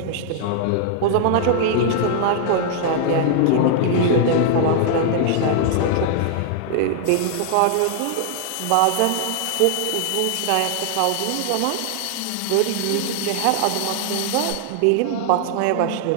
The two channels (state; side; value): different; both; correlation -0.01